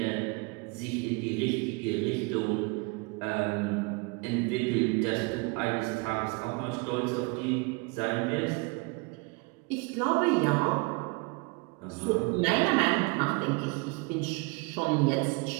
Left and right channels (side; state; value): left; quieter; 29.1 dB